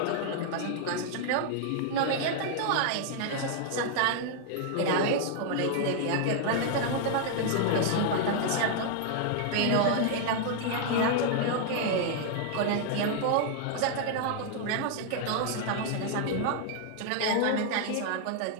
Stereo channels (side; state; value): both; different; correlation 0.00